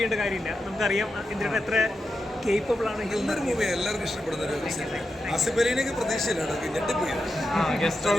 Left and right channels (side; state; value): both; normal; correlation 0.88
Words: കാര്യമില്ല. നമുക്കറിയാം ഇന്ദ്രേട്ടൻ എത്ര കേപ്പബിൾ ആണ്. എല്ലാവർക്കും ഇഷ്ടപ്പെടുന്ന ഒരു ആസിഫ് അലിനെയൊക്കെ പ്രതീക്ഷയിലാണ്.